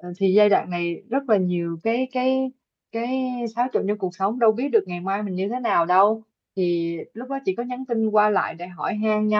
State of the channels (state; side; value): identical; both; correlation 1.00